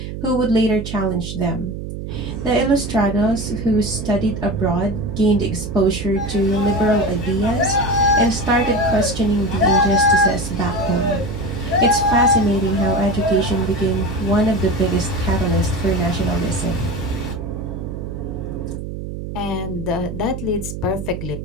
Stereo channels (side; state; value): right; noise; hum, 7 dB below the sound